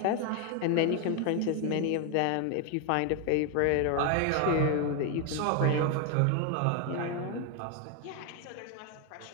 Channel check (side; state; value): both; different; correlation 0.01